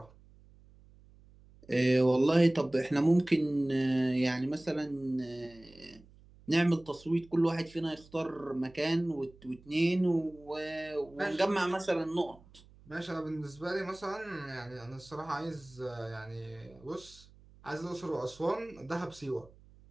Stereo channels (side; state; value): right; noise; hum, 25 dB below the sound